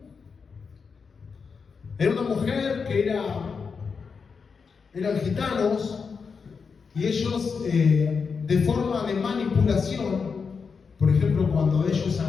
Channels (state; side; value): quieter; right; 5.5 dB